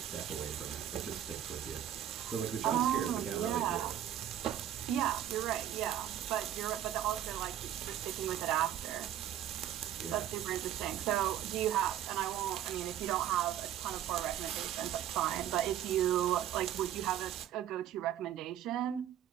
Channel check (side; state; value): left; quieter; 11.1 dB